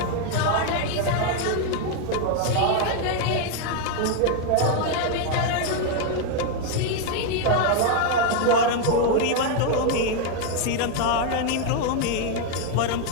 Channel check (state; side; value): different; both; correlation 0.00